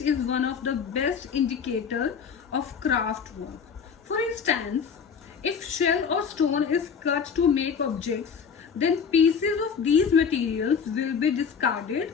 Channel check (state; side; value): quieter; right; 6.5 dB